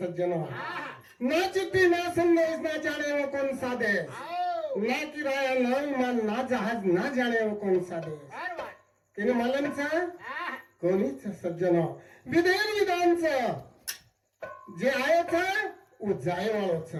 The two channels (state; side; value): identical; both; correlation 1.00